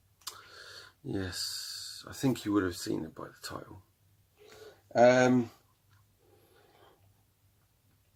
Yes, I think you would have seen it by the title. And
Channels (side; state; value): both; identical; correlation 1.00